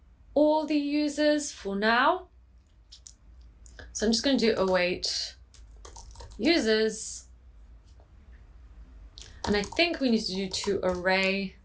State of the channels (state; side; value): identical; both; correlation 1.00